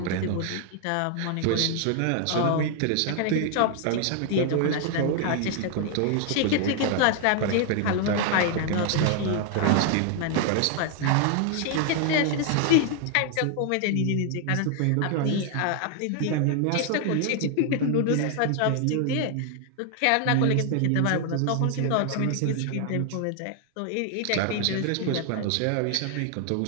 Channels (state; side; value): different; both; correlation 0.00